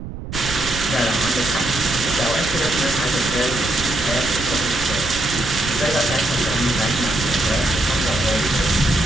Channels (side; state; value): right; noise; rumble, 9 dB below the sound